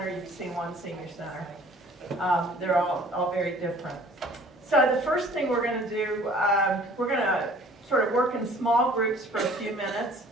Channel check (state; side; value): normal; both; correlation 0.52